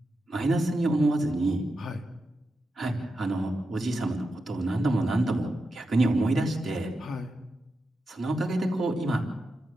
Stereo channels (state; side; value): normal; both; correlation 0.88